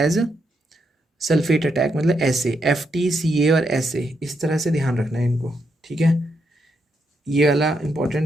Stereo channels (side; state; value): both; normal; correlation 0.80